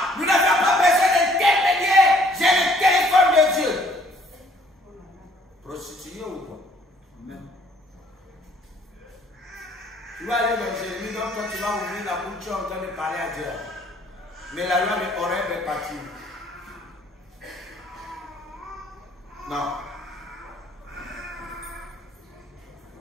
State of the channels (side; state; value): both; normal; correlation 0.60